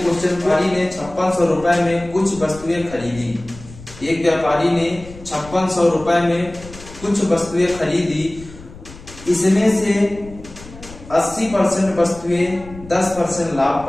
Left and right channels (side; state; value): left; noise; rumble, 17 dB below the sound